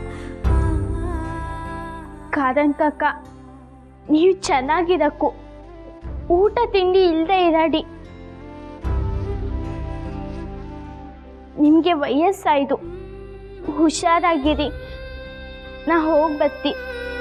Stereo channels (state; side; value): identical; both; correlation 1.00